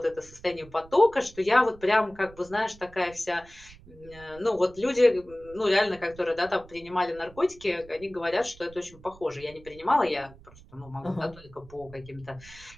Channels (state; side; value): noise; right; rumble, 21 dB below the sound